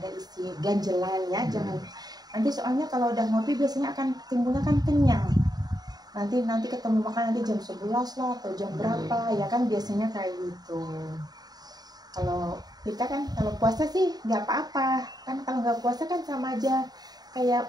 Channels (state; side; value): late; left; 0.19 ms